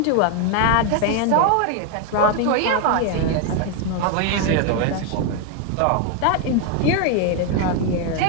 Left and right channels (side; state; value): both; different; correlation 0.01